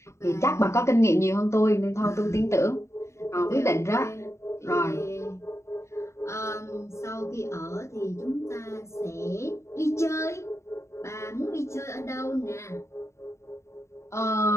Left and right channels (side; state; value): right; late; 0.14 ms